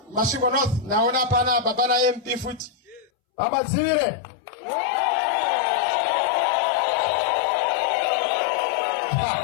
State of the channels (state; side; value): drops out; right; at 3.1 s